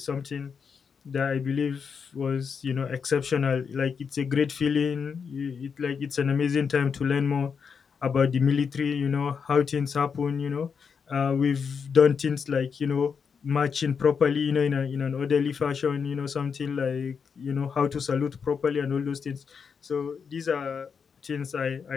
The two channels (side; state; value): right; quieter; 6.2 dB